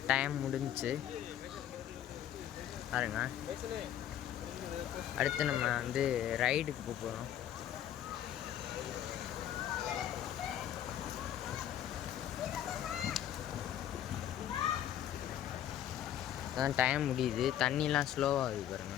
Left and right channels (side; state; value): right; quieter; 11.1 dB